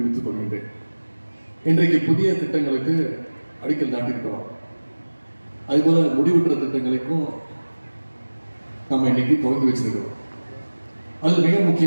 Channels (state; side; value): inverted; both; correlation -1.00